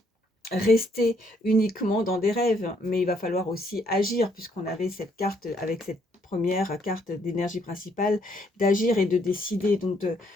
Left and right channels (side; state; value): both; normal; correlation 0.69